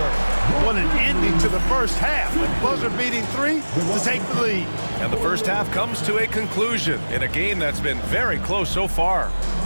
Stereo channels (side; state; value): both; inverted; correlation -1.00